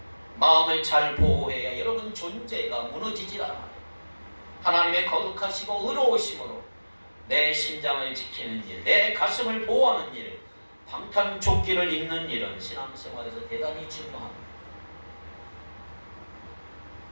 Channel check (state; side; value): inverted; both; correlation -1.00